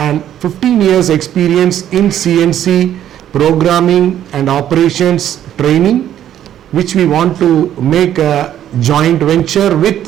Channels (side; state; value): left; quieter; 11.1 dB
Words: 15 years experience in CNC programming and operations training, which we want to make a joint venture with